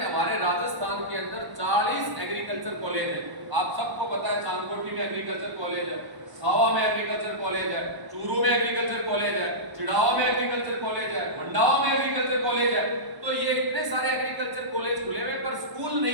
हमारे राजस्थान के अंदर 40 एग्रीकल्चर कॉलेज है। आप सबको पता है चांदकोटी में एग्रीकल्चर कॉलेज है, सावा में एग्रीकल्चर कॉलेज है, चूरू में एग्रीकल्चर कॉलेज है, चिड़ावा में एग्रीकल्चर कॉलेज है, मंडावा में एग्रीकल्चर कॉलेज है। तो ये इतने सारे एग्रीकल्चर कॉलेज खुले हुए पर स्कूल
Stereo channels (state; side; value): late; left; 1.0 ms